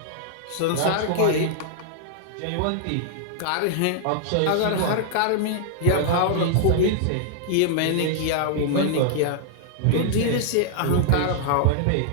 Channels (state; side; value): different; both; correlation -0.01